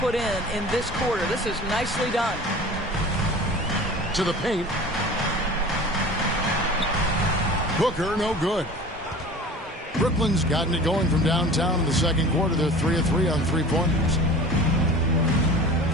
in this quarter. This is nicely done. To the paint. Booker, no good. Brooklyn's gotten it going from downtown in the second quarter. They're 3 of 3 on three-pointers.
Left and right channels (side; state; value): both; normal; correlation 0.40